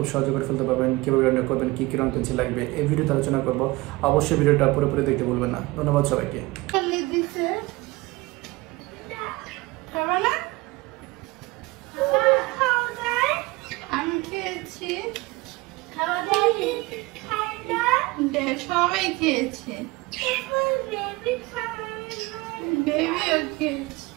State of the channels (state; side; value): quieter; left; 22.0 dB